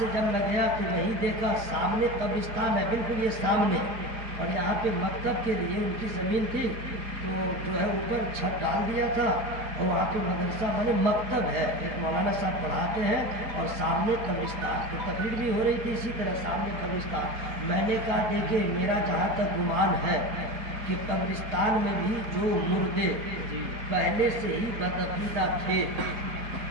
جب میں گیا تو یہی دیکھا سامنے قبرستان ہے بالکل یہ سامنے اور یہاں پہ مکتب کے لیے ان کی زمین تھی تو جو ہے اوپر چھت ڈال دیا تھا اور وہاں پہ مدرسہ بنے مکتب ہے ایک مولانا صاحب پڑھاتے ہیں اور سامنے قبرستان تو تقریر بھی ہو رہی تھی اسی طرح سامنے قبرستان میں نے کہا دیکھیے میرا جہاں تک گمان ہے کہ قبرستان میں بھی جو مردے پہلے سے ہی بدعقیدہ تھے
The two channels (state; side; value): late; left; 4.9 ms